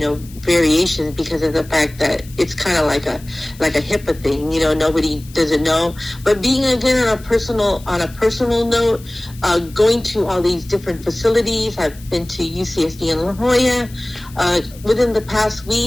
variations, because of the fact that it's kind of like a HIPAA thing. Nobody doesn't know. But being, again, on a personal note, going to all these different facilities. I've been to UCSD in La Jolla. Within the past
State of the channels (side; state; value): left; noise; hiss, 22 dB below the sound